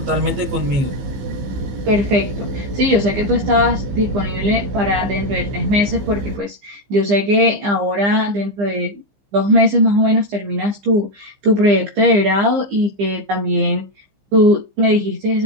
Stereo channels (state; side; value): late; left; 15 ms